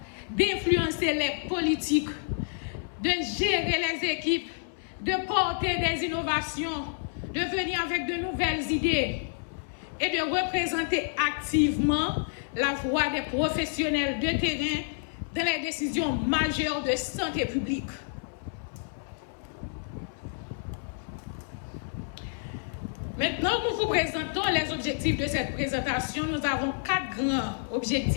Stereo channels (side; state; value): right; silent; 59 dB below the other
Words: d'influencer les politiques, de gérer les équipes, de porter des innovations, de venir avec de nouvelles idées et de représenter activement la voix des professionnels de terrain dans les décisions majeures de santé publique. Maintenant, nous vous présentons les objectifs de cette présentation. Nous avons 4 grands